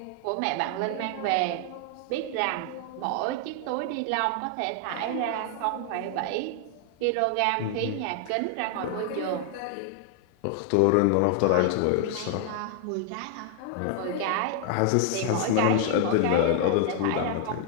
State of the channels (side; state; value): both; different; correlation 0.00